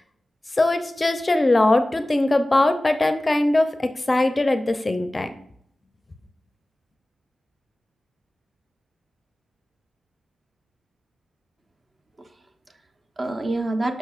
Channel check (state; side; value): normal; both; correlation 0.97